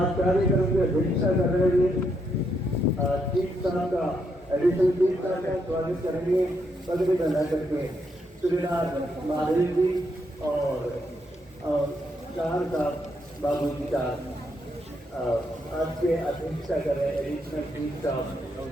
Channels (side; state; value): both; normal; correlation 0.78